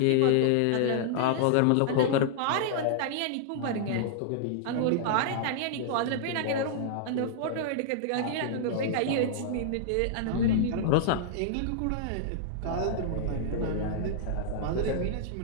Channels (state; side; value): different; both; correlation -0.01